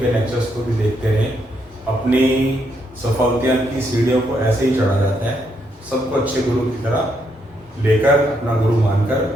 लेक्चर्स को भी देखते रहें। अपनी सफलता की सीढ़ियों को ऐसे ही चढ़ा जाता है। सबको अच्छे गुरु की तरह लेकर, अपना गुरु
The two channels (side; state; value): both; normal; correlation 0.77